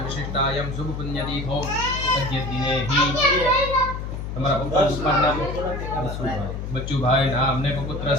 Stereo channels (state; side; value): noise; left; hum, 6 dB below the sound